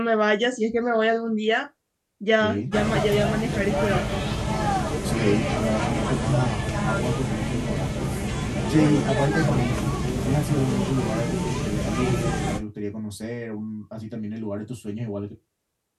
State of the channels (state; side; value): identical; both; correlation 1.00